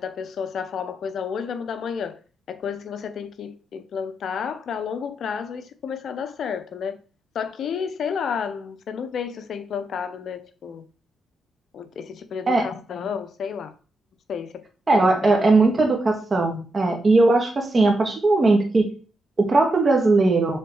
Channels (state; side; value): normal; both; correlation 0.84